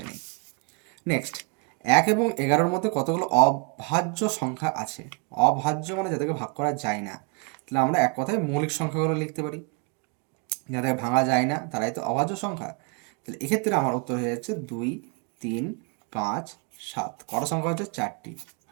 নেই। নেক্সট, 1 এবং 11-এর মধ্যে কতগুলো অভাজ্য সংখ্যা আছে? অভাজ্য মানে যাদেরকে ভাগ করা যায় না, তাহলে আমরা এক কথায় মৌলিক সংখ্যাগুলো লিখতে পারি, যাদের ভাঙা যায় না তারাই তো অভাজ্য সংখ্যা। তাহলে এক্ষেত্রে আমার উত্তর হয়ে যাচ্ছে 2 3 5 7, কটা সংখ্যা হচ্ছে? 4টি,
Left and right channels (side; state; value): left; quieter; 33.5 dB